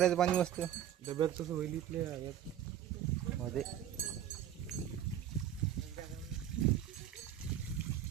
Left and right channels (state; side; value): quieter; left; 10.6 dB